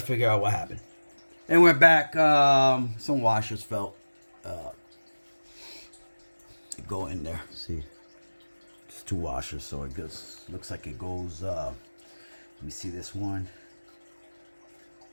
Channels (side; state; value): both; inverted; correlation -1.00